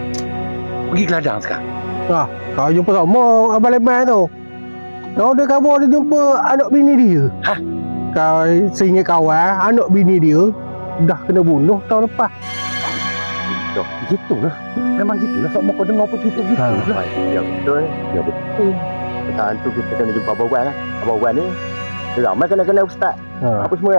pergi ke ladang sekarang. Kau jumpa sama Abang Leman tu. Kau ada khabar dia jumpa anak bini dia. Hah? Kau seingat kawan, anak bini dia dah kena bunuh tahun lepas. Gitulah. Memang gitulah. Sok kau dengar apa gitu lah. Ya betul. Ya betul. Pasal tu kita kena jumpa Abang Wan lah. Abang Wan ni dia ramai kena ustaz. Apa semua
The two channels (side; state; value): both; inverted; correlation -1.00